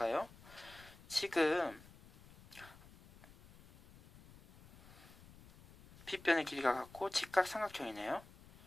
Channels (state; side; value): noise; left; rumble, 21 dB below the sound